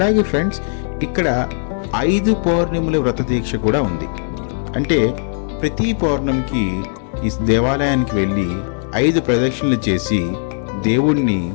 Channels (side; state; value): right; silent; digital silence